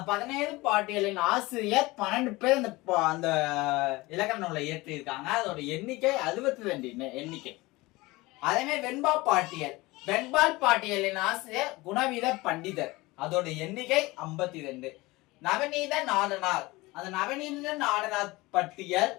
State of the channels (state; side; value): quieter; right; 21.4 dB